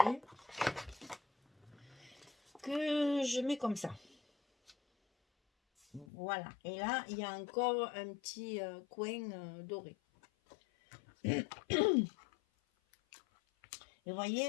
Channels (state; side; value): drops out; right; at 6.1 s